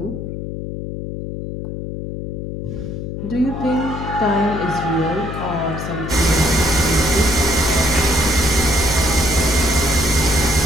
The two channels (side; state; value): left; noise; hum, 7 dB below the sound